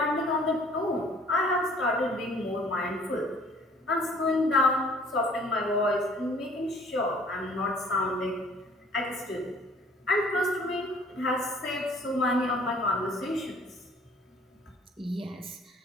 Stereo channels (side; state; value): both; normal; correlation 0.55